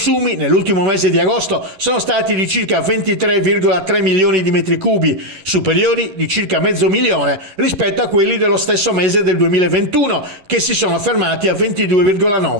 nell'ultimo mese di agosto sono stati di circa 23,3 milioni di metri cubi, superiori di circa mezzo milione rispetto a quelli dello stesso mese del 2021, che si sono fermati a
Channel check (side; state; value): left; late; 11 ms